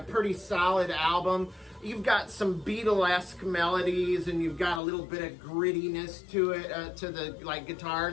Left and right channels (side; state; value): right; drops out; at 4.8 s